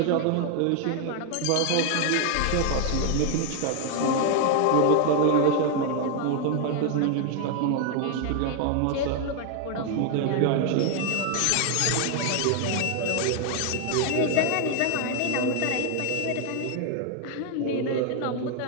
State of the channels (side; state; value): both; different; correlation 0.00